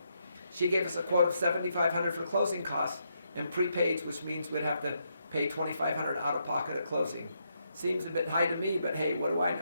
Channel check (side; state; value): both; inverted; correlation -0.79